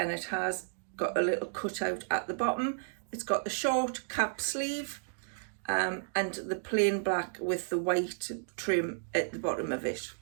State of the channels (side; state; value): left; silent; digital silence